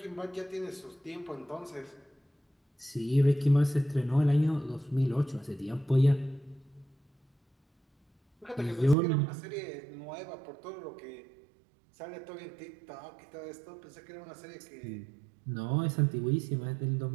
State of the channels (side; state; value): left; drops out; at 9.0 s